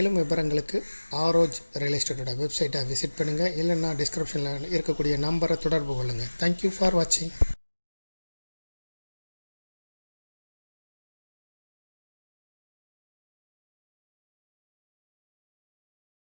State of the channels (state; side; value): inverted; both; correlation -1.00